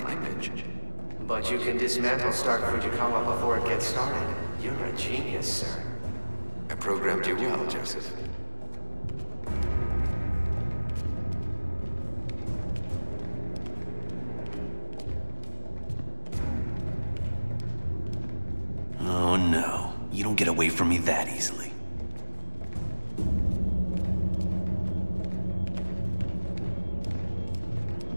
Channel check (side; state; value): both; inverted; correlation -1.00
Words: image, But you can dismantle Stark Fujikawa before it gets started. You're a genius, sir. I programmed you well, Joseph. Oh no, you don't get away from me that easily.